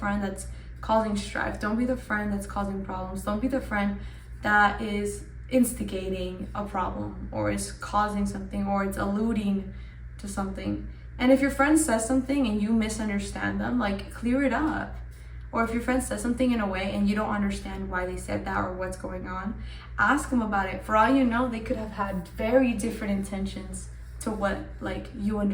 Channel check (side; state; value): both; identical; correlation 1.00